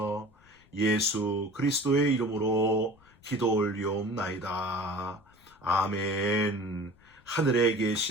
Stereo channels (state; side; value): noise; left; rumble, 29 dB below the sound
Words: 예수 그리스도의 이름으로 기도 올리옵나이다. 아멘. 하늘에